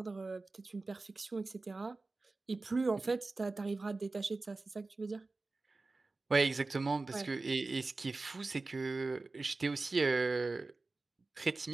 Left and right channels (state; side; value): quieter; left; 3.5 dB